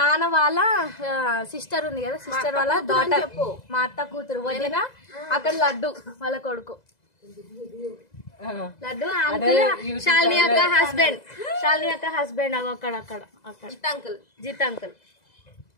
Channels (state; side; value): late; right; 2.0 ms